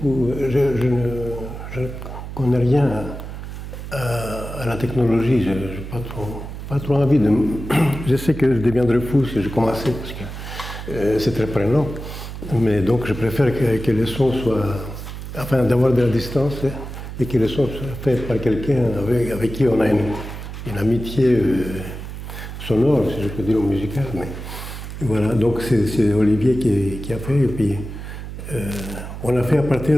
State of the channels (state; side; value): noise; right; hum, 9 dB below the sound